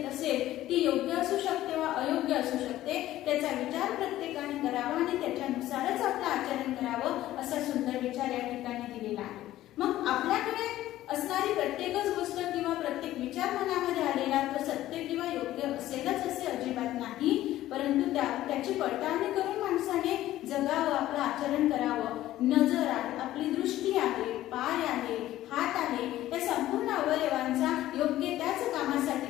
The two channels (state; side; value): quieter; right; 14.4 dB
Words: असेल, ती योग्य असू शकते वा अयोग्य असू शकते, त्याचा विचार प्रत्येकाने करावा आणि त्याच्यानुसारच आपलं आचरण करावं असा सुंदर विचार या ठिकाणी दिलेला आहे. मग आपल्याकडे असणारी प्रत्येकच गोष्ट किंवा प्रत्येक विचार मनामध्ये आलेला तो सत्य किंवा योग्य असेलच असे अजिबात नाही, परंतु त्याची पडताळणी करून माणसाने जगावं, आपलं आचरण करावं. नजर आहे, आपली दृष्टी आहे, पाय आहे, हात आहे, या संपूर्ण अवयवांचा योग्य त्याच